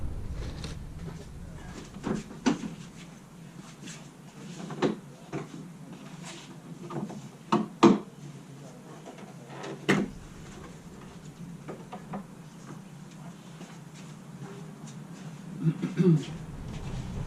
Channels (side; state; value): both; identical; correlation 1.00